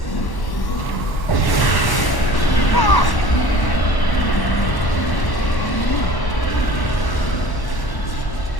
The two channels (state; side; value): late; right; 1.1 ms